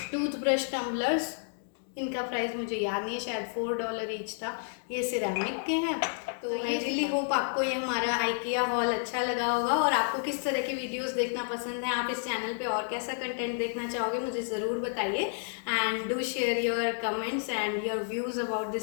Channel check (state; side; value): silent; right; digital silence